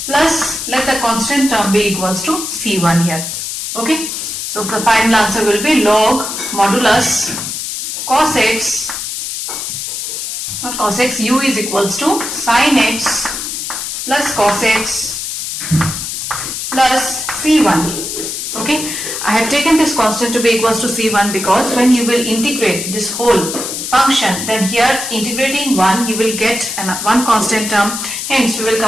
plus, let the constant term be equals to c1 here. Okay. So the final answer will be log modulus cos x, not cos x, u is equals to sin x plus cos x plus c1. Okay, I have taken this constant to be equals to c1 because when you will integrate this whole function, then here integrating 1 you will get one constant term. Hence we will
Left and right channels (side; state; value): left; noise; hiss, 5 dB below the sound